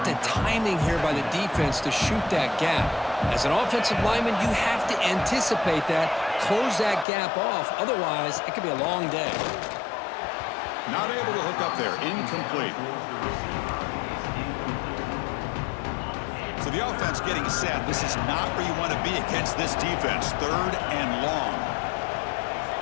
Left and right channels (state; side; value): drops out; right; at 7.1 s